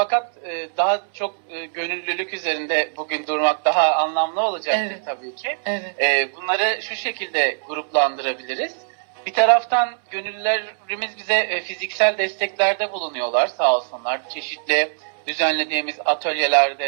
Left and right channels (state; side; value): silent; left; 64 dB below the other